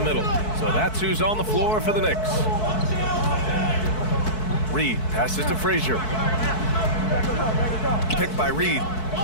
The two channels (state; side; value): late; right; 4.6 ms